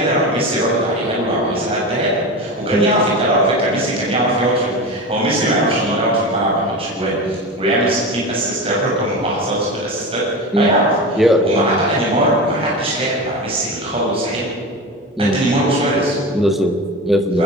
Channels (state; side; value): normal; both; correlation 0.26